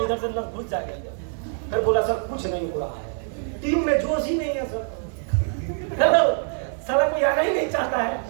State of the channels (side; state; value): left; silent; 60 dB below the other